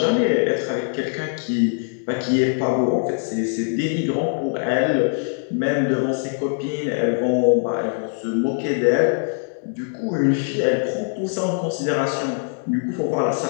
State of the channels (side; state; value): right; silent; 63 dB below the other